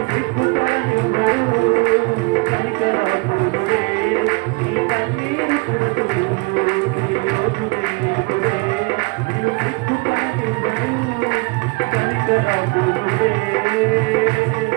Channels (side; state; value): left; quieter; 28.8 dB